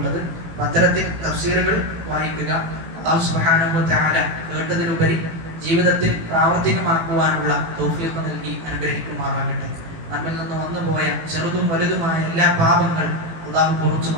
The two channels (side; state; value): left; late; 18 ms